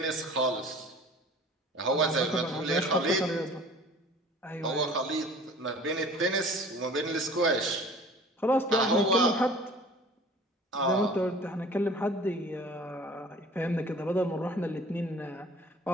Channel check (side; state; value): both; normal; correlation 0.47